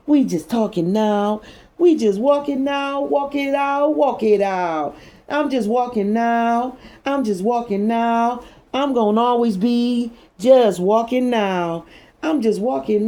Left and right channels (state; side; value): identical; both; correlation 1.00